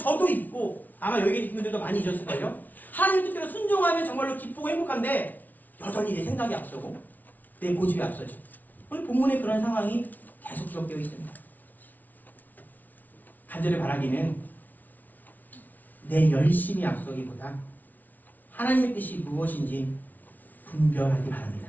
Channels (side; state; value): right; late; 0.080 ms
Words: 잊고 아마 여기 계신 분들도 많이 잊었을걸요. 하나님 뜻대로 순종하면 정말로 기쁘고 행복한데 여전히 내 생각이 앞서고 내 고집이 앞서죠. 오늘 본문에 그런 상황이 계속 기록되어 있습니다. 간절히 바라기는 내 열심이 앞서기보다 하나님의 뜻이 무엇인지 분별하기 바랍니다.